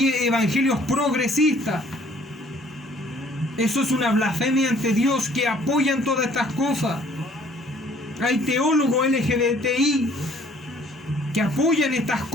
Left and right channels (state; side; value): normal; both; correlation 0.58